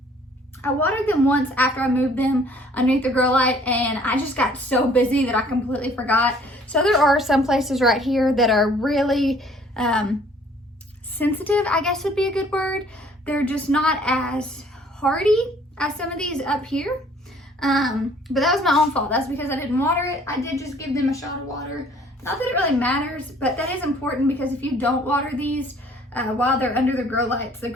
I watered them once after I moved them underneath the grow light, and I just got so busy that I completely forgot. So there are some places right here that are really sensitive, I guess would be a good word. They're just not as hardy as some of these up here. But that was my own fault. That's because I didn't water it. I did just give them a shot of water. Not that it really matters, but that is important, because if you don't water these while they're under the grow lights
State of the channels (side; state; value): both; normal; correlation 0.57